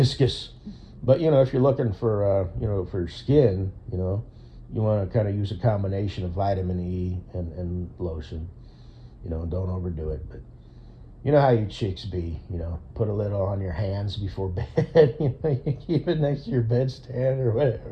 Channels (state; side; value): identical; both; correlation 1.00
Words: But, if you're looking for, for skin, you want to kind of use a combination of vitamin E and lotion. Don't overdo it. But you know how you chicks be, put a little on your hands before bed. You keep it next to your bedstand or